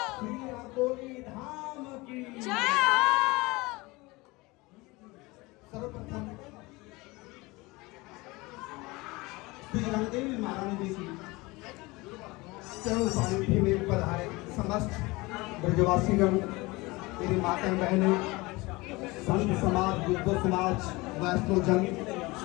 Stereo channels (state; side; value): quieter; right; 22.9 dB